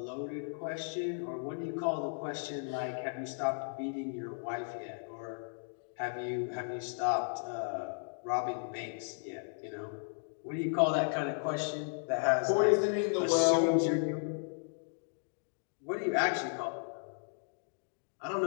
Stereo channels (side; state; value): right; silent; digital silence